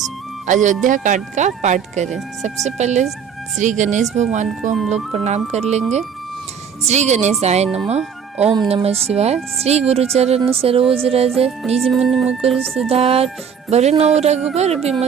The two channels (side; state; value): left; quieter; 7.1 dB